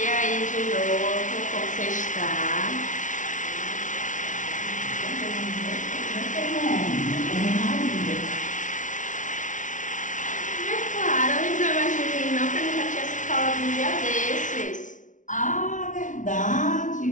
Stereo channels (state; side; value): late; right; 0.37 ms